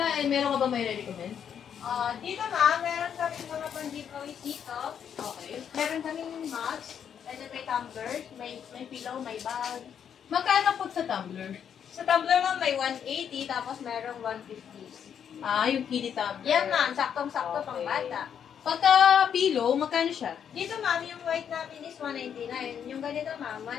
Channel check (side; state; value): right; quieter; 8.3 dB